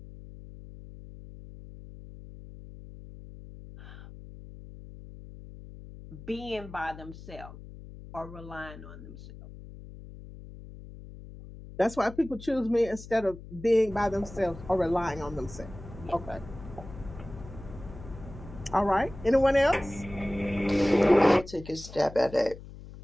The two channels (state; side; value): noise; left; hum, 15 dB below the sound